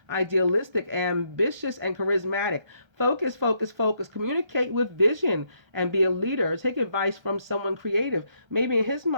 idealistic, ambitious, and charismatic. Focus, focus, focus. Communicate with vision and be a leader. Take advice from someone creative. Maybe in his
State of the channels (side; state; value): left; late; 1.3 ms